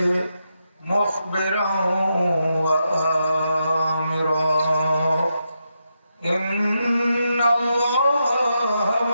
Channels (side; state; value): both; inverted; correlation -0.84